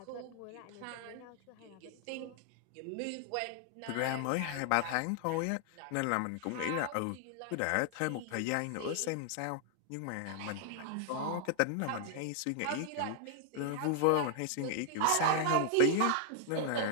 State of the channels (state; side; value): different; both; correlation 0.00